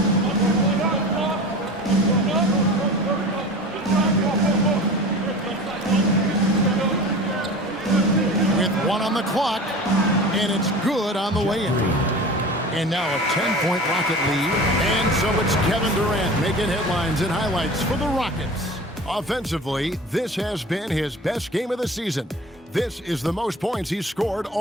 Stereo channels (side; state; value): both; normal; correlation 0.36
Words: With 1 on the clock, and it's good on the way in. And now a 10-point Rocket lead. And so it's Kevin Durant making headlines and highlights for the Rockets. Offensively, this has been his best game of the season. This is the most points he's scored